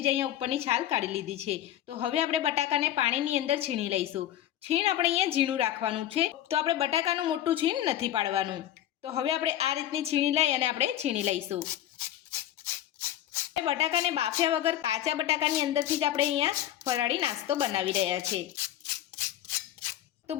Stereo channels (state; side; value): quieter; right; 12.2 dB